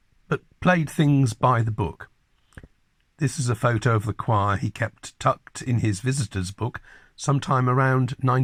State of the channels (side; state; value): both; identical; correlation 1.00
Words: but played things by the book. This is a photo of the choir he kept tucked in his visitor's book sometime around